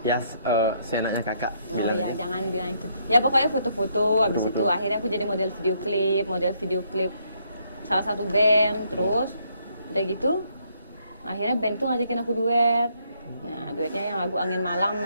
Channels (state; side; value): inverted; both; correlation -0.72